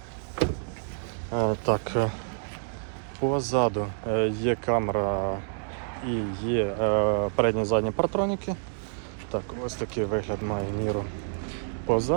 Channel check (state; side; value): silent; left; digital silence